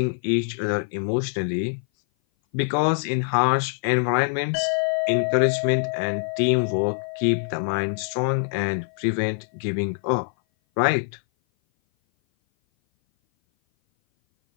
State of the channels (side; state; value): right; silent; 58 dB below the other